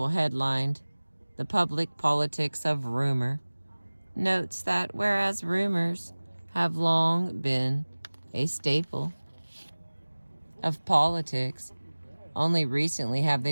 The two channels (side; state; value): both; inverted; correlation -1.00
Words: headlined, "The Public Politics of Rumor," notes that whereas rumors have long been a staple of politics, only recently have